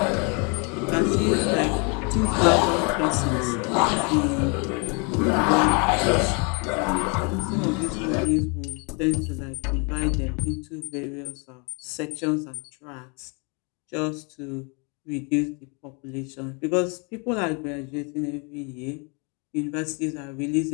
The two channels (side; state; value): right; quieter; 34.0 dB